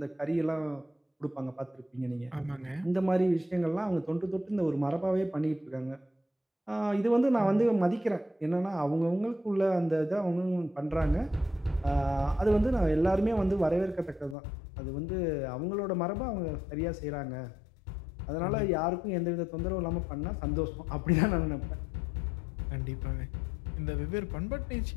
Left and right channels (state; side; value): drops out; right; at 14.4 s